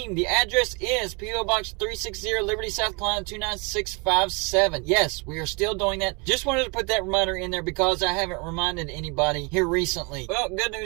The address is P.O. Box 360, Liberty, South Carolina 29657. Yes, we are still doing that. Just wanted to put that reminder in there because I haven't reminded anybody here recently. Well, good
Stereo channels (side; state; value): left; quieter; 31.0 dB